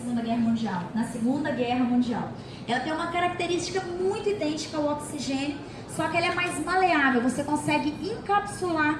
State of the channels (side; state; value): both; identical; correlation 1.00